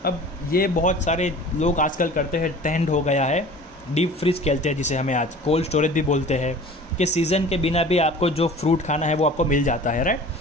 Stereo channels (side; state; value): both; normal; correlation 0.43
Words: अब ये बहुत सारे लोग आजकल करते हैं, ट्रेंड हो गया है, डीप फ्रीज कहते हैं जिसे हमें आज कोल्ड स्टोरेज भी बोलते हैं, कि सीज़न के बिना भी आपको जो फ्रूट खाना है वो आपको मिल जाता है, राइट।